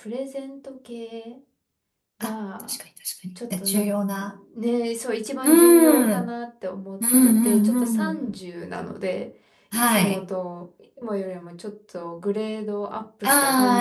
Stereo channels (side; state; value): both; identical; correlation 1.00